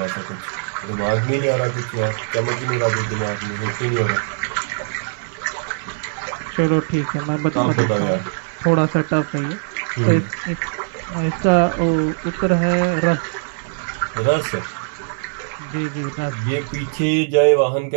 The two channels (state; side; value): silent; left; digital silence